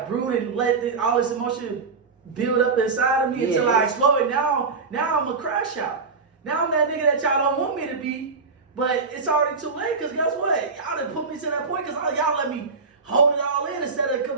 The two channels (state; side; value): quieter; left; 4.6 dB